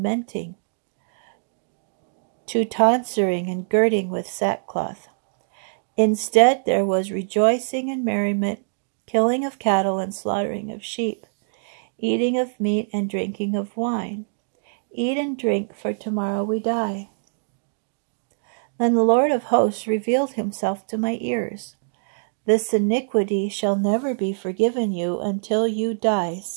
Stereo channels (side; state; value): left; silent; digital silence